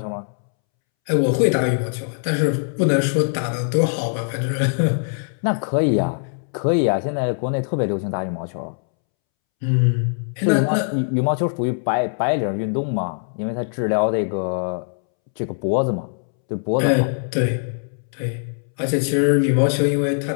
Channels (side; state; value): right; silent; 64 dB below the other